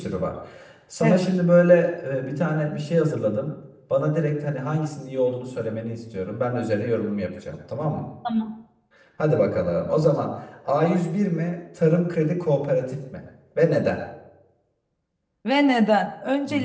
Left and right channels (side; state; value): both; identical; correlation 1.00